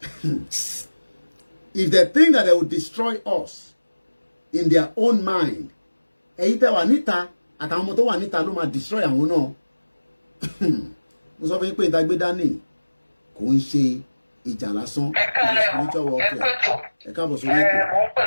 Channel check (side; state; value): both; inverted; correlation -1.00